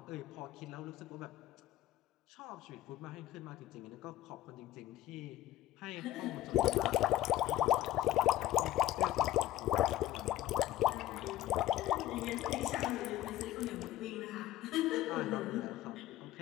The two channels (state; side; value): quieter; right; 14.0 dB